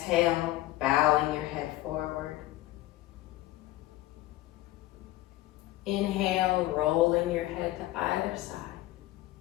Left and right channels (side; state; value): right; quieter; 16.5 dB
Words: bowing your head forward. Inhale, rolling your head to either side.